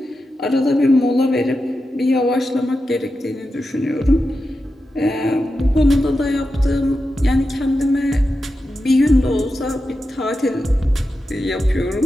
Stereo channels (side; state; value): both; normal; correlation 0.90